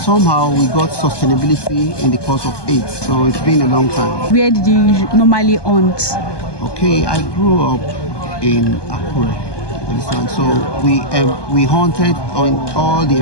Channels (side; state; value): right; late; 1.2 ms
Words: we got sustainability in the course of it. So it's been a long time. Where did you normally hunt? Okay, I grew up in Akure. So we hunted on all the